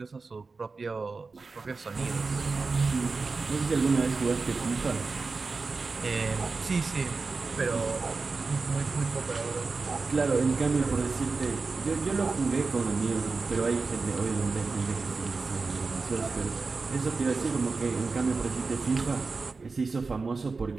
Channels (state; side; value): quieter; left; 4.2 dB